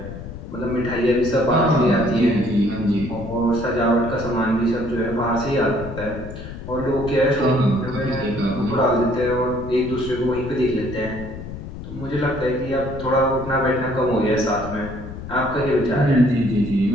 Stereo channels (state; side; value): noise; left; rumble, 11 dB below the sound